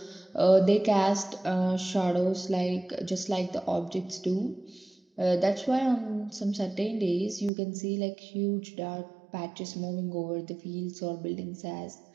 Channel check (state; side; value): drops out; left; at 7.5 s